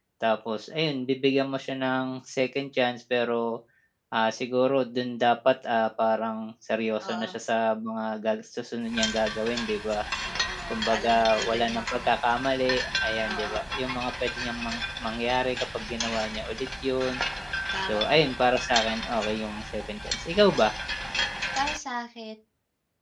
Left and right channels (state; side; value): identical; both; correlation 1.00